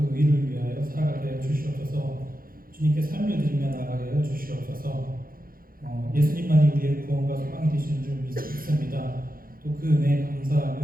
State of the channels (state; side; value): late; left; 0.42 ms